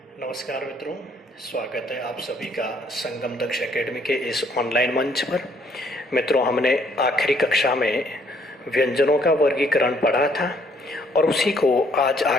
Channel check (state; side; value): normal; both; correlation 0.65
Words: नमस्कार मित्रों, स्वागत है आप सभी का संगम दक्ष एकेडमी के इस ऑनलाइन मंच पर। मित्रों, हमने आखिरी कक्षा में व्यंजनों का वर्गीकरण पढ़ा था और उसी को आज